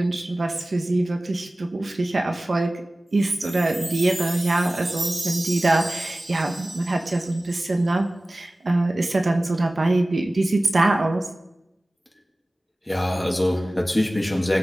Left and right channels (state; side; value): normal; both; correlation 0.97